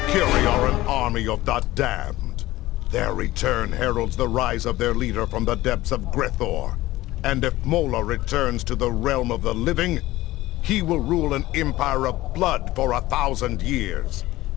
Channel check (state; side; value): quieter; right; 17.2 dB